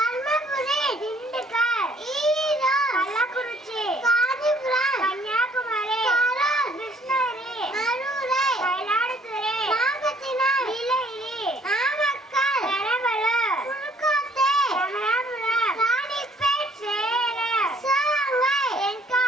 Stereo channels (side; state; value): both; normal; correlation 0.61